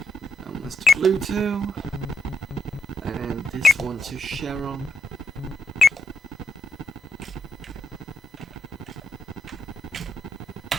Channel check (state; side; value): normal; both; correlation 0.80